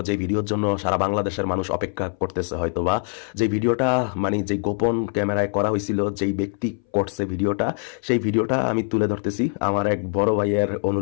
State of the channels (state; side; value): silent; right; 62 dB below the other